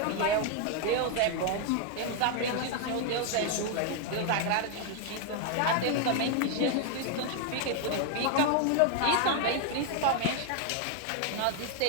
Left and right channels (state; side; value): different; both; correlation 0.00